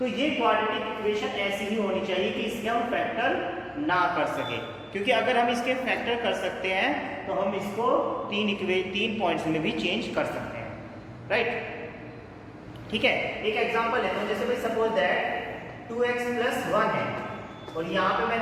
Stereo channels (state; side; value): identical; both; correlation 1.00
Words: ये क्वाड्रेटिक इक्वेशन ऐसी ही होनी चाहिए कि इसके हम फैक्टर ना कर सके, क्योंकि अगर हम इसके फैक्टर कर सकते हैं तो हम इसको तीन पॉइंट्स में भी चेंज कर सकते हैं, राइट? ठीक है, एक एग्जांपल है, तो जैसे भाई सपोज दैट 2x + 1 है और यहाँ पे